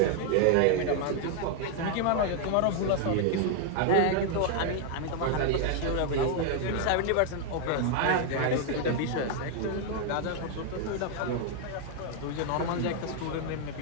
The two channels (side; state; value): both; different; correlation 0.00